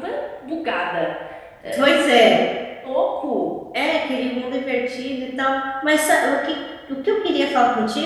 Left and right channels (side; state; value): both; identical; correlation 1.00